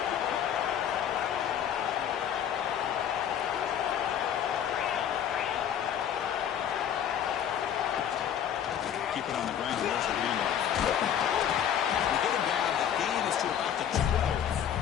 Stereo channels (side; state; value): right; quieter; 9.3 dB